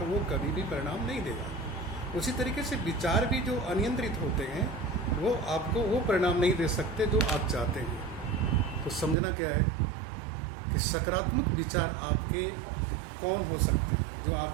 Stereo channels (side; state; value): left; drops out; at 9.2 s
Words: वो कभी भी परिणाम नहीं देगा। उसी तरीके से विचार भी जो अनियंत्रित होते हैं वो आपको वो परिणाम नहीं दे सकते जो आप चाहते हैं। तो समझना क्या है कि सकारात्मक विचार आपके कौन हो सकते हैं, जो